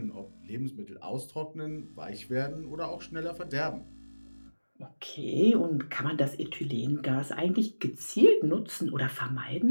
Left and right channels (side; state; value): both; inverted; correlation -1.00